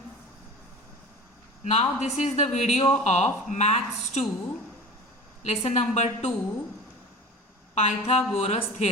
Now this is the video of Maths 2 lesson number 2 Pythagoras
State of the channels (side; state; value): both; normal; correlation 0.35